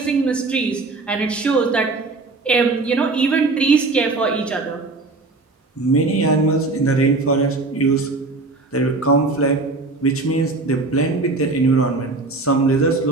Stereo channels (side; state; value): left; quieter; 3.5 dB